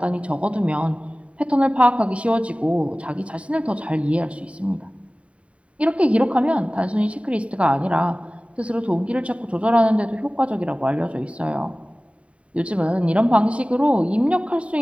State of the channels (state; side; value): late; left; 0.063 ms